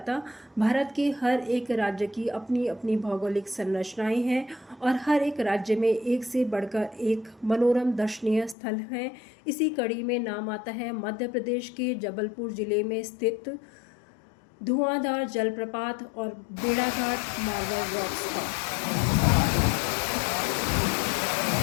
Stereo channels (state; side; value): drops out; right; at 8.6 s